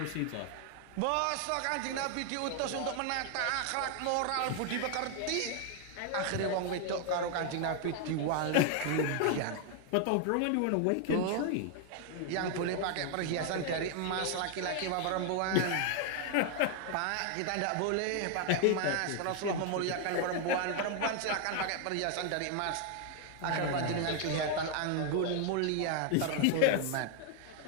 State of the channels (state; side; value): different; both; correlation 0.00